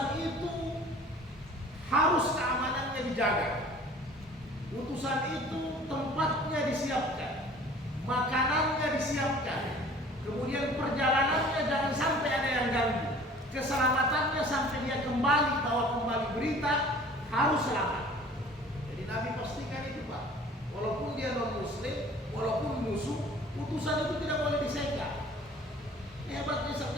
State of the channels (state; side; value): normal; both; correlation 0.48